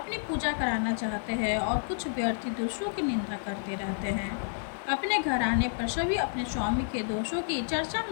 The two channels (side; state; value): right; silent; 58 dB below the other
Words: पूजा कराना चाहते हैं और कुछ व्यर्थी दूसरों की निंदा करते रहते हैं। अपने घर आने पर सभी अपने स्वामी के दोषों की चर्चा